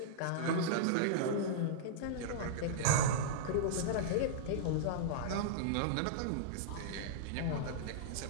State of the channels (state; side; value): different; both; correlation -0.02